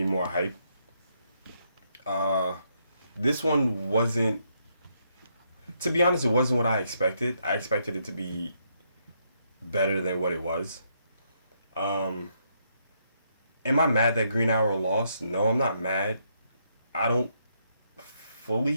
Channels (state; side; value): inverted; both; correlation -0.76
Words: more hype. This one wasn't, to be honest, it wasn't what I expected. I expected it to be better than what it was. Am I mad that Green Arrow lost? No, I'm not mad. I don't